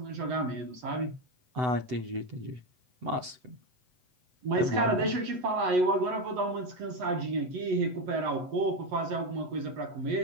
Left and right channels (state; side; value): late; left; 8.0 ms